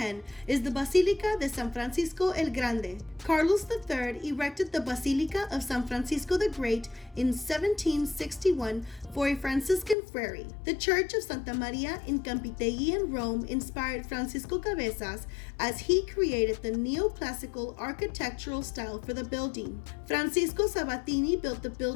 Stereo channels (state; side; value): drops out; right; at 10.0 s